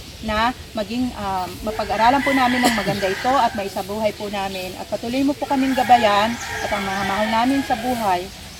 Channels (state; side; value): identical; both; correlation 1.00